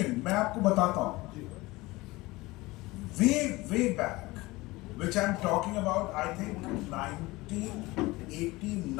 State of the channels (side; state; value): right; quieter; 21.0 dB